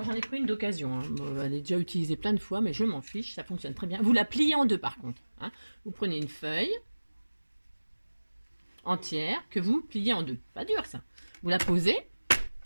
j'en ai pris une d'occasion, hein. Elle est déjà utilisée plein de fois, mais je m'en fiche, ça fonctionne très bien. Vous la pliez en deux par contre. Hein. Vous prenez une feuille entière que vous pliez en deux. Pas dur ça. Vous la posez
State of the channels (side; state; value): both; inverted; correlation -1.00